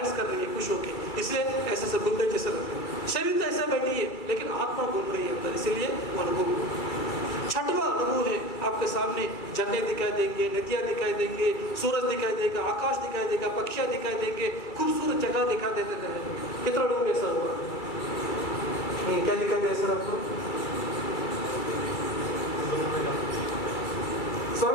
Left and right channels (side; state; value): right; late; 2.3 ms